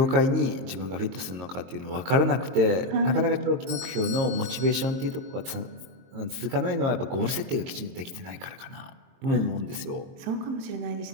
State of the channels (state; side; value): late; left; 22 ms